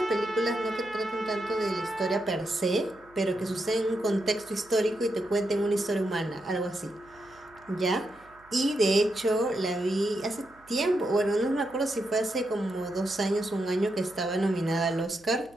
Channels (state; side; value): noise; right; hum, 29 dB below the sound